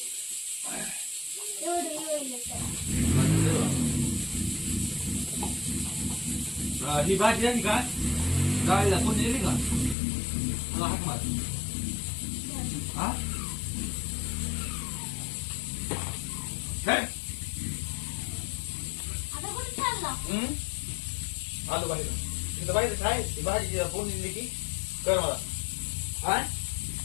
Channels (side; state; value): right; drops out; at 10.0 s